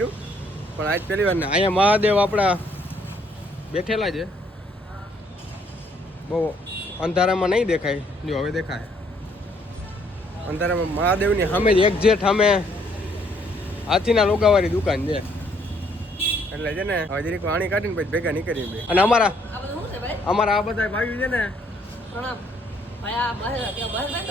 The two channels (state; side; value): normal; both; correlation 0.66